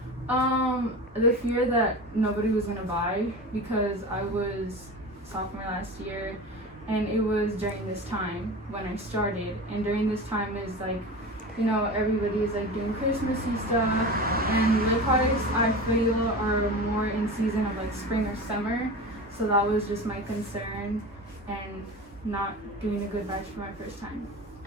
The fear that nobody was gonna buy, because I was sophomore last year, and it was during this time when I started, and during this time is like, you know, everybody is like doing Christmassy stuff, and lip products I feel are more in season of like spring or summer, so that was just my concern, and not doing a good batch for my first time.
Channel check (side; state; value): both; normal; correlation 0.30